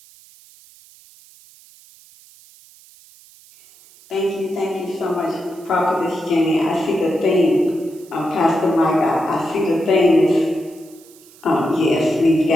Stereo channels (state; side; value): noise; right; hiss, 25 dB below the sound